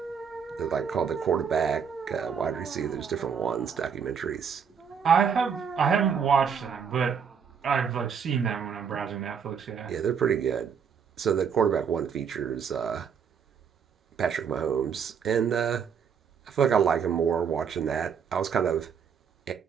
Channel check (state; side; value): quieter; left; 7.0 dB